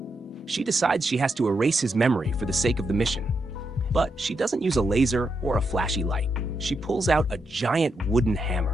She decides she has to erase his memory for the sake of the mission. But she doesn't use a laser or a flashy light. She pulls out a giant wooden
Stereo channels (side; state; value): both; normal; correlation 0.82